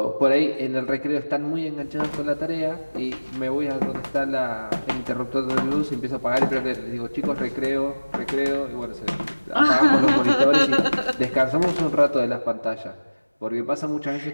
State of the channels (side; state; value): both; inverted; correlation -1.00